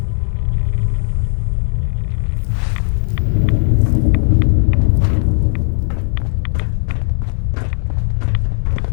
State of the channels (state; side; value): silent; right; 69 dB below the other